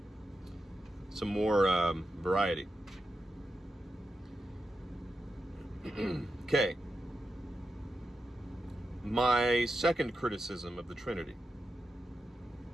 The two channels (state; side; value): normal; both; correlation 0.89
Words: more variety. Okay. My second criticism of the Trinity.